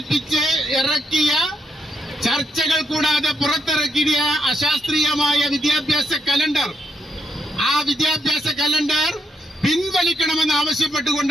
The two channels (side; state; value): both; normal; correlation 0.78